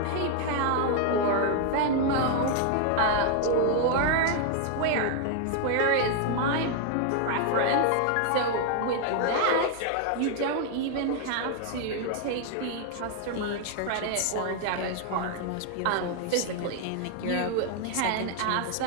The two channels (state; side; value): different; both; correlation 0.00